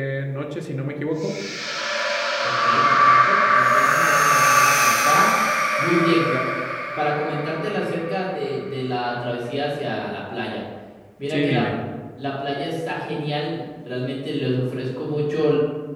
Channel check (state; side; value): identical; both; correlation 1.00